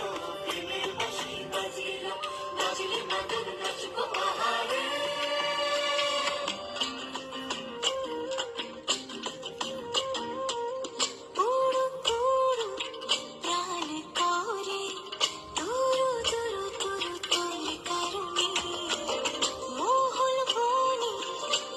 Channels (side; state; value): both; identical; correlation 1.00